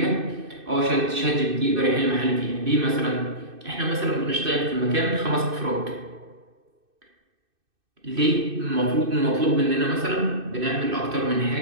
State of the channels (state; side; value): late; left; 2.6 ms